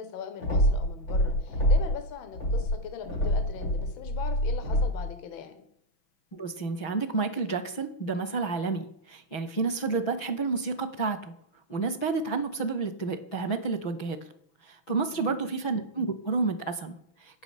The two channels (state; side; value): late; right; 6.1 ms